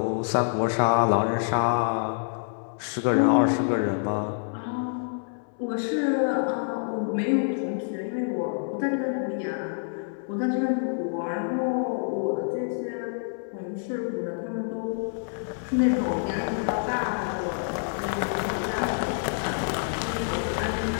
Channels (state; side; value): silent; right; 60 dB below the other